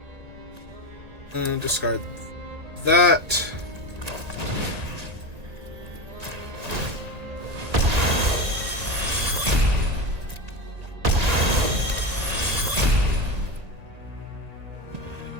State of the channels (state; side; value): late; left; 1.8 ms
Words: And discard that.